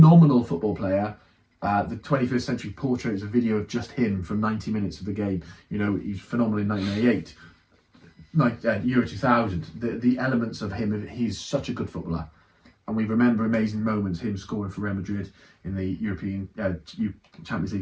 football player. The 21st Century Portrait is a video of just him from 90 minutes of the game. You know, he's phenomenal in 1998. Euro 2000. The elements of him, he's such a good footballer. And we remember amazing moments, him scoring for Real Madrid in the European Champions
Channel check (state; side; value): identical; both; correlation 1.00